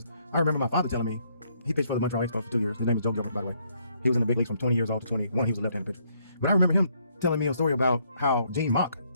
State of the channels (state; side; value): inverted; both; correlation -0.70